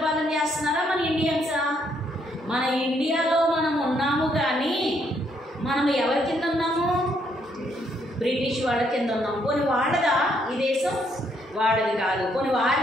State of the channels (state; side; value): normal; both; correlation 0.72